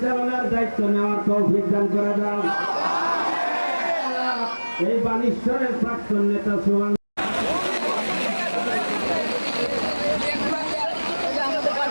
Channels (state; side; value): inverted; both; correlation -1.00